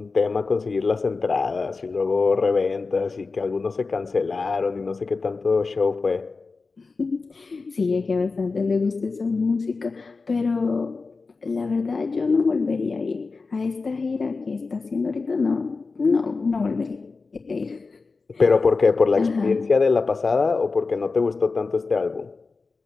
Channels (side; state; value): right; quieter; 4.2 dB